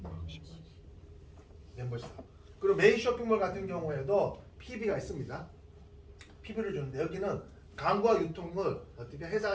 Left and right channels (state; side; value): identical; both; correlation 1.00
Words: 멤버십 사업. 그리고 메인 쇼핑몰 같은 경우에도 PB가 있습니다. PB를 주는데 여기는 광고와 유통을 어떻게